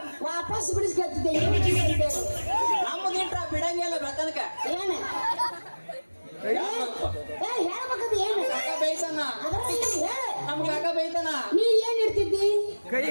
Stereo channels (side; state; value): both; inverted; correlation -1.00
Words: ವಾಪಸ್ ಬಿಡಿಸ್ಕೊಳ್ತಿದ್ದೆ ನಮ್ದು ಇಟ್ರ ಬಿಡಂಗಿಲ್ಲ ಬೆಳತನಕ ಏನ ಹೇಳ್ಬೇಕದು ಏನು ಕಾಕ ಬೇಯ್ತಾನ ಅದ್ರಲ್ಲಿ ಹೇಳ ನಮ್ ಕಾಕ ಬೇಯ್ತಾನ ನೀ ಏನ್ ಇಡ್ತಿದ್ದಿ